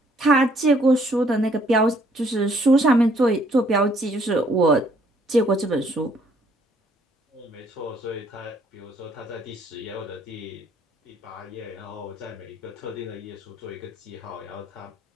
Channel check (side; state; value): both; normal; correlation 0.65